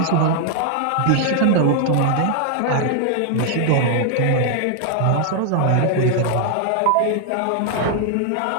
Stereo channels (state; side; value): different; both; correlation 0.00